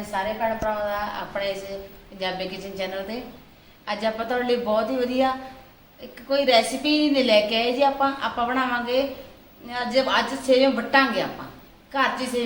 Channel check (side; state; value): both; identical; correlation 1.00